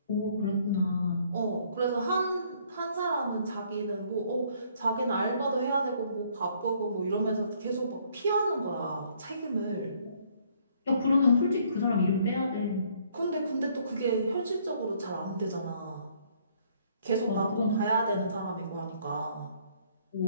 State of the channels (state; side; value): inverted; both; correlation -0.64